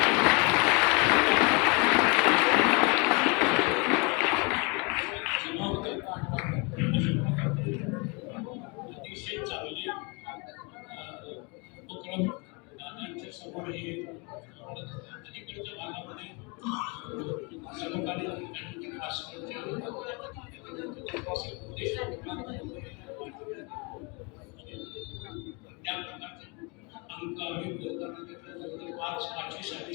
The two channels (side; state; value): right; quieter; 30.7 dB